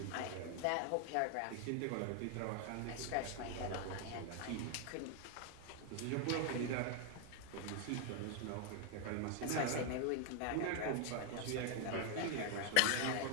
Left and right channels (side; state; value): both; different; correlation 0.00